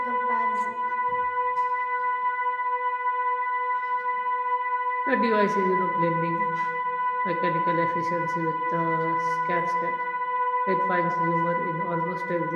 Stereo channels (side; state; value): both; identical; correlation 1.00